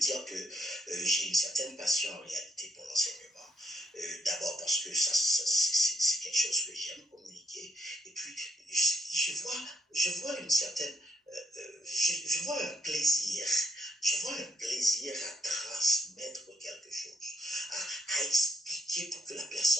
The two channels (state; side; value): normal; both; correlation 0.74